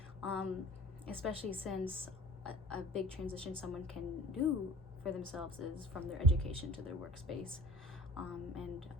um, especially since a big transition someone can do for themselves is from their education to their workspace.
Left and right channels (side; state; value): both; normal; correlation 0.43